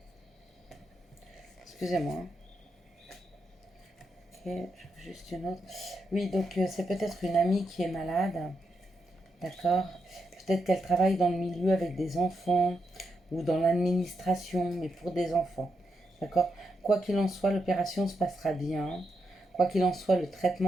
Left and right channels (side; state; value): both; normal; correlation 0.83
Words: Excusez-moi. Hein. Ok, juste une autre. Oui, donc c'est peut-être une amie qui est malade. D'accord. Peut-être qu'elle travaille dans le milieu avec des enfants ou dans l'administration, mais pour des enfants. D'accord. Quoi qu'il en soit, l'opération se passera bien. Quoi qu'il en soit, le